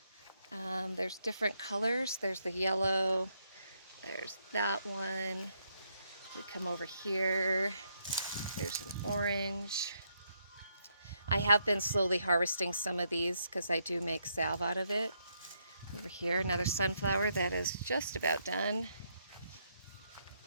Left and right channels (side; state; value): both; inverted; correlation -0.76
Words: There's different colors. There's the yellow. There's that one. We come over here. There's an orange. I have been slowly harvesting some of these because I do make salve out of it. Over here, another sunflower that is just about done.